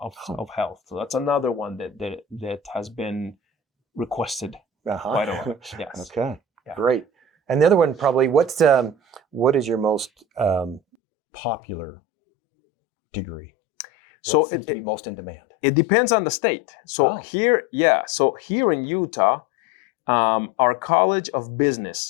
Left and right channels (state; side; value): drops out; right; at 11.0 s